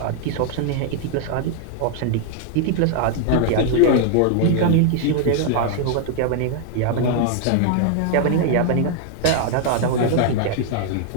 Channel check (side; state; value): both; different; correlation 0.00